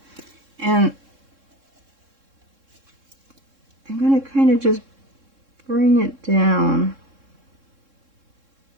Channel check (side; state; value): left; late; 3.7 ms